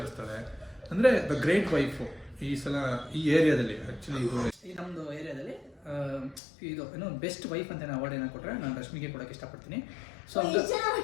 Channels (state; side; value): drops out; right; at 6.4 s